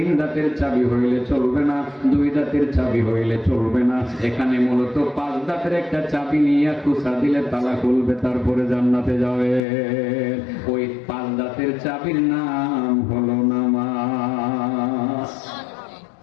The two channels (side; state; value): right; drops out; at 9.6 s